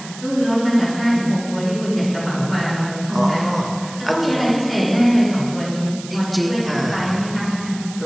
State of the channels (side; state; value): right; noise; hiss, 15 dB below the sound